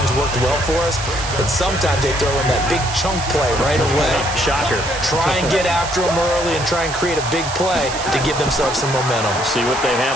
worked well for us. And sometimes they throw in that big chunk play right away. Shocker. Try and get after them early and try and create a big play to give themselves some momentum. See what they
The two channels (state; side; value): noise; right; hiss, 8 dB below the sound